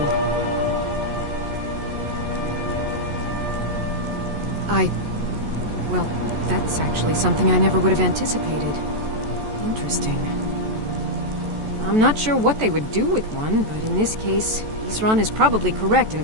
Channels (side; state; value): left; late; 14 ms